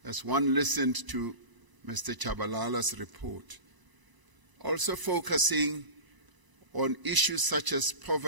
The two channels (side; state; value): left; late; 1.0 ms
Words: as one listened to Mr. Chabalala's report, also focusing on issues such as